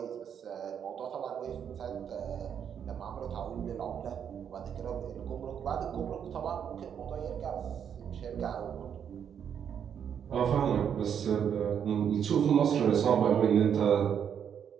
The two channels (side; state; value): left; quieter; 8.2 dB